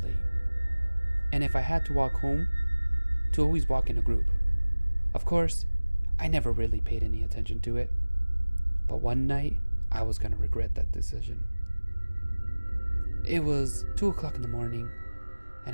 And if I had to walk home, to always walk in a group. Of course, I never really paid any attention to it. But one night, I was gonna regret that decision. It was 2 o'clock in the morning, and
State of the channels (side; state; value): both; inverted; correlation -1.00